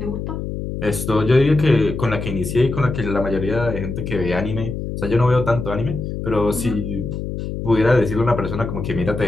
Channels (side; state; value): left; noise; hum, 5 dB below the sound